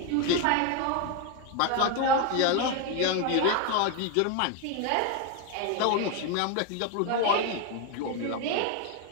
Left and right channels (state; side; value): different; both; correlation 0.02